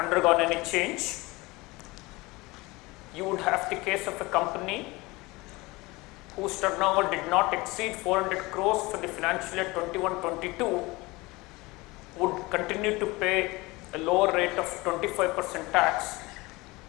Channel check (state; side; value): quieter; right; 22.6 dB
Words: any change. You would have the case of a company whose turnover did not exceed 400 crores for the financial year 21-22 would continue to pay a lower rate of 25% tax,